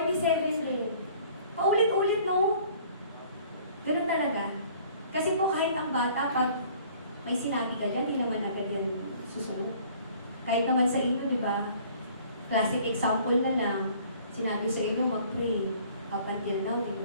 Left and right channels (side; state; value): both; inverted; correlation -0.54